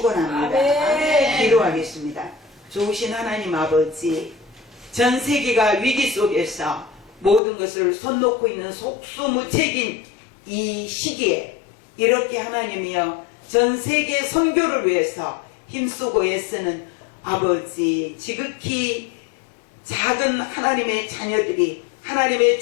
기도하겠습니다. 좋으신 하나님 아버지, 전 세계가 위기 속에서 모든 것을 손 놓고 있는 속수무책인 이 시기에 이렇게 하나님이여 전 세계 선교를 위해서 힘쓰고 애쓰는 아버지, 지극히 작은 하나님의 자녀들이 하나님의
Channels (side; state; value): right; drops out; at 7.4 s